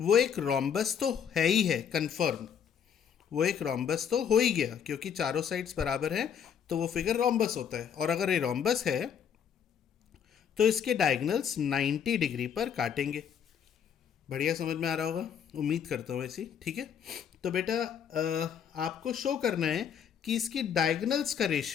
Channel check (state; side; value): quieter; right; 8.1 dB